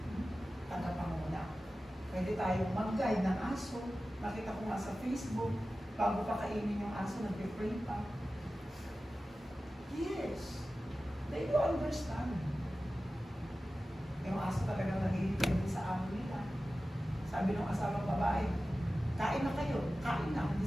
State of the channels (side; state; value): both; normal; correlation 0.95